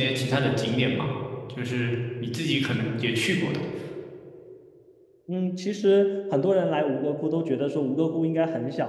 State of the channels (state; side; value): identical; both; correlation 1.00